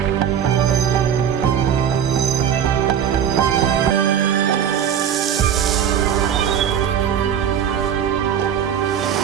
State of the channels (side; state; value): left; quieter; 8.8 dB